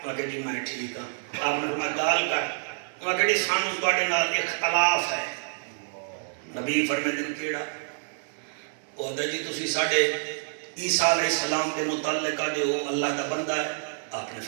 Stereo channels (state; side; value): silent; left; digital silence